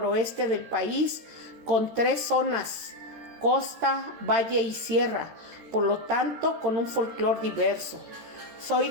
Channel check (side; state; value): left; late; 13 ms